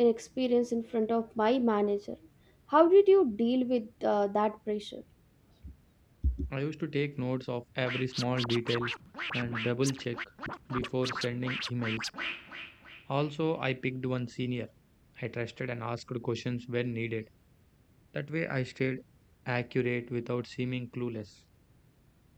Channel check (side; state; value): both; identical; correlation 1.00